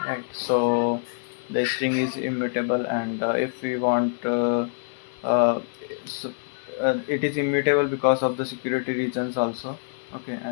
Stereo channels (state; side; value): silent; right; 57 dB below the other